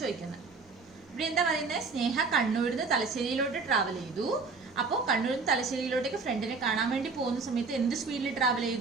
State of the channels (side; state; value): left; quieter; 4.4 dB